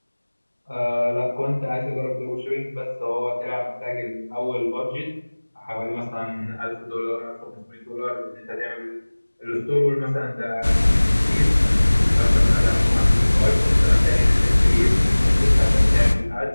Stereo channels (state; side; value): inverted; both; correlation -1.00